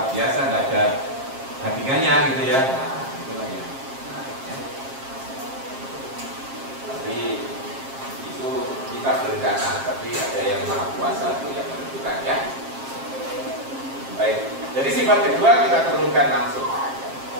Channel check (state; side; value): late; left; 7.5 ms